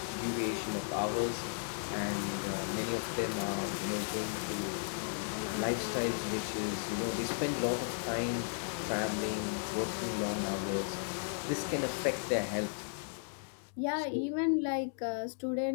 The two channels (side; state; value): right; silent; digital silence